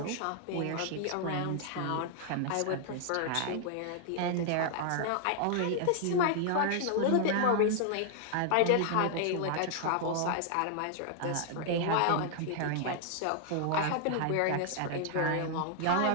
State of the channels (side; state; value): both; different; correlation -0.01